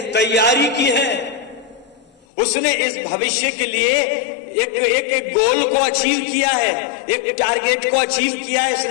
तैयारी की है। उसने इस भविष्य के लिए एक गोल को अचीव किया है, एक टारगेट को अचीव किया है,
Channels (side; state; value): right; drops out; at 2.1 s